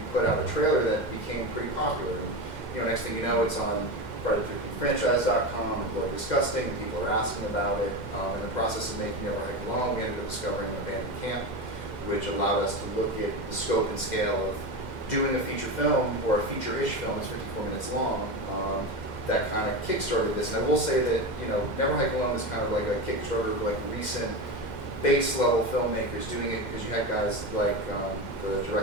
put out a trailer that became pretty popular. And, you know, next thing you know, it's on FridayTheRepeatFranchise.com and Bloody Disgusting, and people are asking about it. In the process of making Never Hike Alone, we ended up discovering an abandoned camp, which allowed us to look at the scope and scale of doing a feature film, or a feature-ish film that's 54 minutes long. That kind of kickstarted this. And I will say that, you know, Never Hike Alone is kind of like a Kickstarter of like recent base level filmmakers doing it, because you had guys like the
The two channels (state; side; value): late; right; 2.1 ms